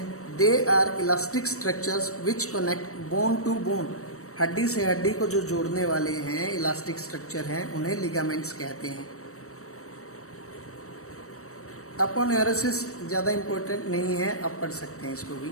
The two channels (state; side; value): late; right; 0.65 ms